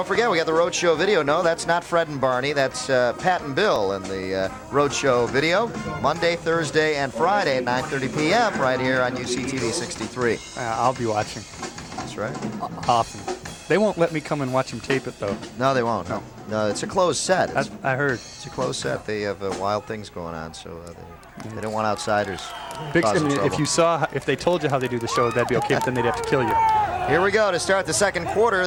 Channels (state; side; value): identical; both; correlation 1.00